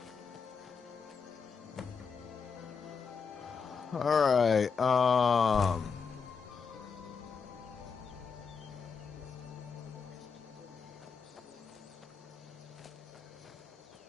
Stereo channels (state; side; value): quieter; right; 5.7 dB